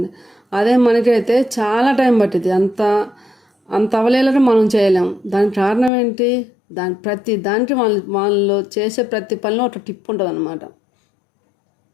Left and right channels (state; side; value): drops out; right; at 5.9 s